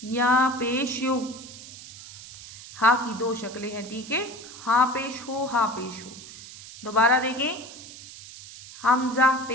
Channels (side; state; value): right; noise; hiss, 15 dB below the sound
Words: या पेश यो। हा की दो शक्लें हैं। ठीक है, हा पेश हो, हा पेश हो। दोबारा देखें, हमज़ा